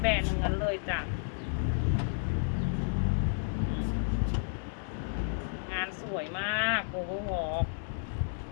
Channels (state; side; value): silent; right; digital silence